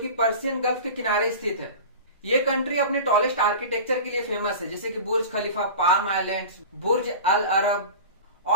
पर्शियन गल्फ के किनारे स्थित है। ये कंट्री अपने टॉलेस्ट आर्किटेक्चर के लिए फेमस है, जैसे कि बुर्ज खलीफा, पाम आइलैंड्स, बुर्ज अल अरब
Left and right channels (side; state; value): both; inverted; correlation -0.33